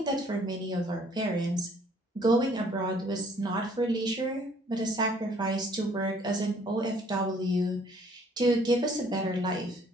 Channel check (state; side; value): normal; both; correlation 0.60